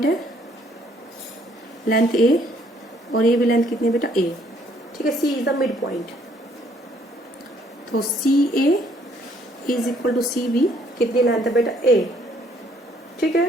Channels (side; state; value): both; normal; correlation 0.65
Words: है, लेंथ ए, और ये भी लेंथ कितनी है बेटा, ए। ठीक है, C is the mid point, तो C A is equal to C B, कितनी लेंथ है बेटा, ए। ठीक